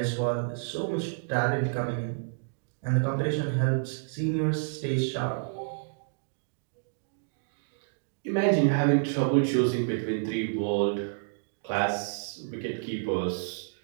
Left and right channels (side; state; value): left; silent; digital silence